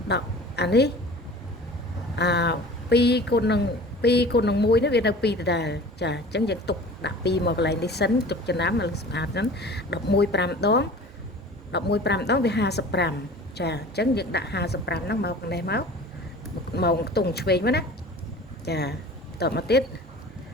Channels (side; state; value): both; normal; correlation 0.42